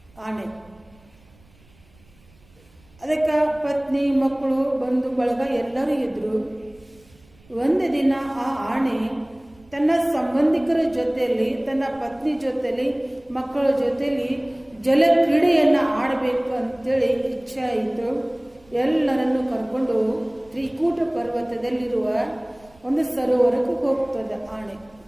ಆಣೆ. ಅದಕ್ಕೆ ಪತ್ನಿ ಮಕ್ಕಳು ಬಂಧು ಬಳಗ ಎಲ್ಲರೂ ಇದ್ರು. ಒಂದು ದಿನ ಆ ಆಣೆ ತನ್ನ ಸಂಬಂಧಿಕರ ಜೊತೆಯಲ್ಲಿ, ತನ್ನ ಪತ್ನಿ ಜೊತೆಯಲ್ಲಿ, ಮಕ್ಕಳ ಜೊತೆಯಲ್ಲಿ ಜಲ ಕ್ರೀಡೆಯನ್ನು ಆಡಬೇಕು ಅಂತೇಳಿ ಇಚ್ಛೆ ಆಯಿತು. ಎಲ್ಲರನ್ನು ಕರ್ಕೊಂಡು ತ್ರಿಕೂಟ ಪರ್ವತದಲ್ಲಿರುವ ಒಂದು ಸರೋವರಕ್ಕೆ ಹೋಗ್ತದ ಆಣೆ.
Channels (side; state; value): right; noise; rumble, 29 dB below the sound